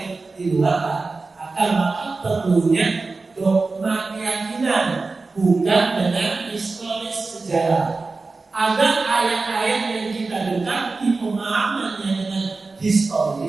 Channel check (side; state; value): left; quieter; 3.8 dB